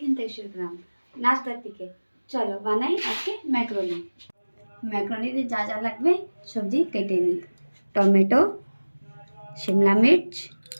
থেকে শুরু করলাম নাস্তার দিকে। চলো বানাই আজকে ম্যাকারনি। ম্যাকারনিতে যা যা লাগবে সবজি কেটে নিই। টমেটো, শিমলা মির্চ,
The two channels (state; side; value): inverted; both; correlation -1.00